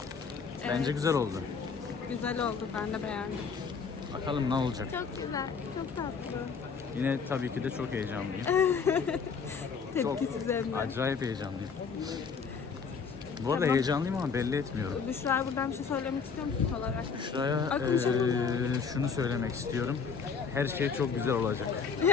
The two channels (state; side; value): quieter; right; 5.8 dB